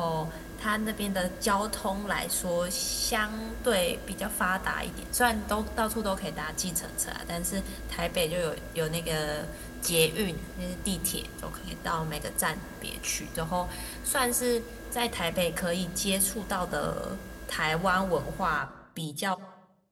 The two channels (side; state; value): both; identical; correlation 1.00